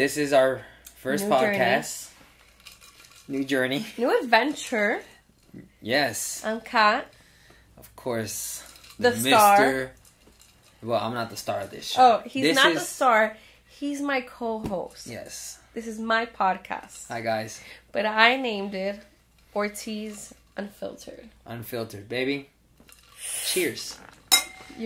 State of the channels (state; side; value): identical; both; correlation 1.00